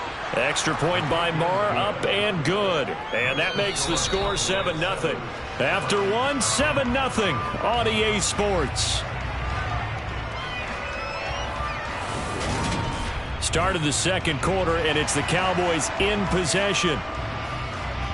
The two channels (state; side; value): identical; both; correlation 1.00